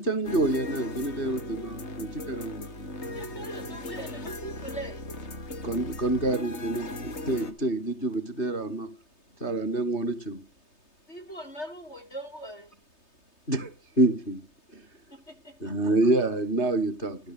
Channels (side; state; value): right; late; 3.3 ms